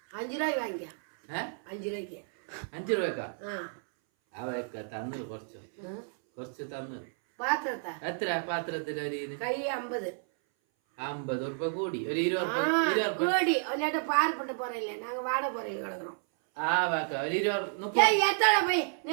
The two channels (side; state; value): left; silent; 57 dB below the other